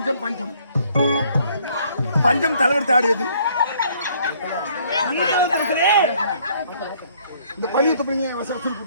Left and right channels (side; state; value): both; inverted; correlation -0.62